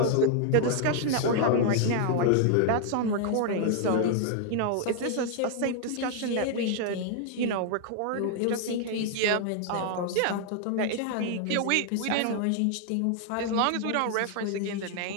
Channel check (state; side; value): different; both; correlation 0.00